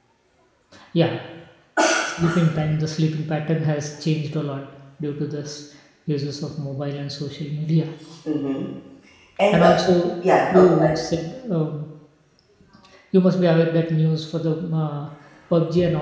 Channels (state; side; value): identical; both; correlation 1.00